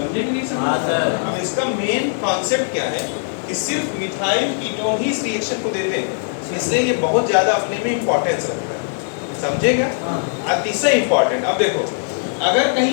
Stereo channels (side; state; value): right; silent; digital silence